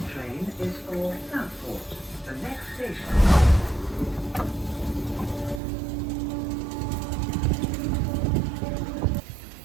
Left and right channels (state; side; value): drops out; left; at 5.6 s